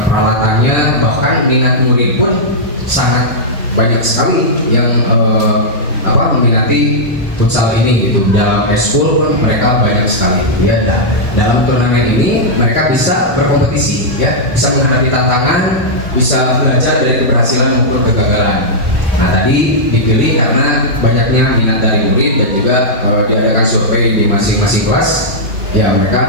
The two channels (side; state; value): both; normal; correlation -0.08